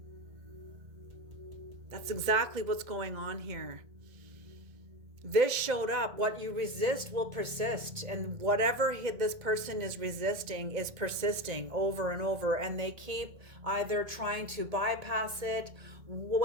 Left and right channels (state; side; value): late; left; 1.6 ms